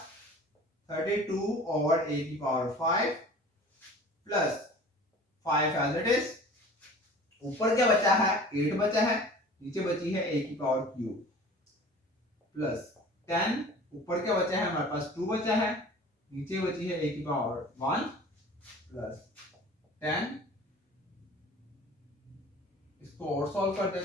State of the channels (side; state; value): both; normal; correlation 0.43